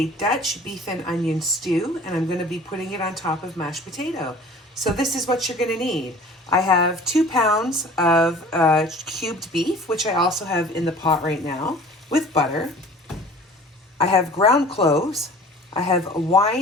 Dutch beef and onion stew, and I'm going to be putting it on top of mashed potato. So this is what you're going to need. I have 2 pounds of cubed beef, which I also have in the pot right now, with butter. I have ground cloves. I have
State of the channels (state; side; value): normal; both; correlation 0.46